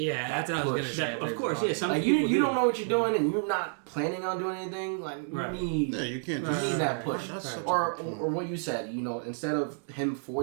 that's what I was gonna say. Of course, yeah. Some like people you don't know what you're doing, and you're not planning on doing anything. Like you need, you can't. You need that push, or what you said. You know, instead of him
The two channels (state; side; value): silent; left; digital silence